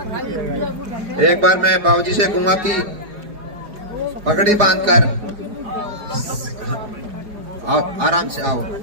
एक बार मैं बाबूजी से कहूंगा कि पगड़ी बांधकर आओ, आराम से आओ,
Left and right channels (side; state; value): left; late; 4.9 ms